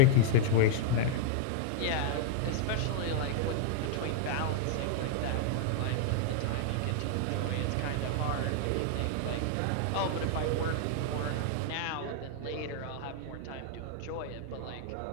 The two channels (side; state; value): both; different; correlation -0.01